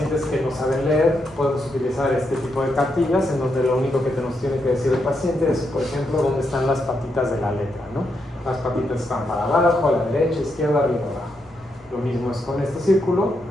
que no saben leer podemos utilizar este tipo de cartillas en donde lo único que nos tiene que decir el paciente es, por ejemplo, dónde están las patitas de la letra, ¿no? Las patitas están para abajo, a la derecha, izquierda, arriba, abajo. Lo mismo es con este círculo,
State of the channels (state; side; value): normal; both; correlation 0.81